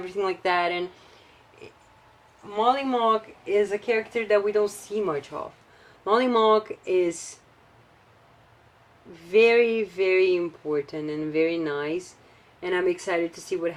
like that. And Molly Mock is a character that we don't see much of. Molly Mock is very, very important and very nice, and I'm excited to see what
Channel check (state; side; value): identical; both; correlation 1.00